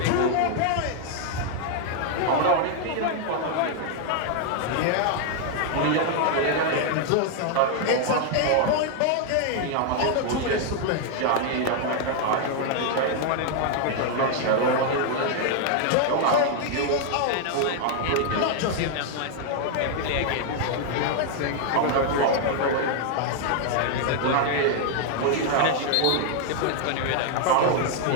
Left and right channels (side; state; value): both; different; correlation 0.00